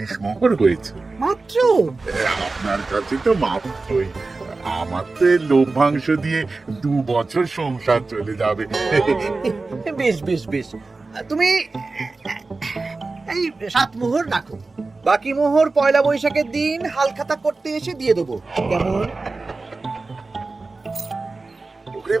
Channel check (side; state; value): left; quieter; 3.7 dB